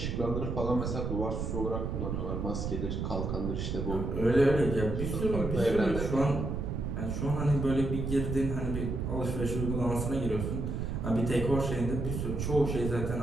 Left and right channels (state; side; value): noise; right; rumble, 2 dB below the sound